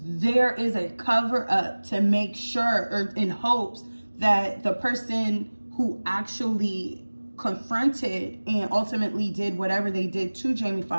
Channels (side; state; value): both; inverted; correlation -1.00